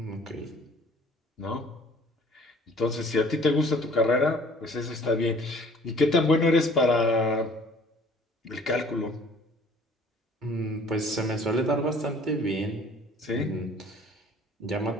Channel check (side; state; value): both; normal; correlation 0.53